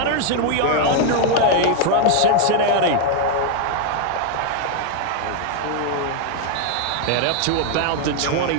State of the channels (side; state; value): both; different; correlation 0.00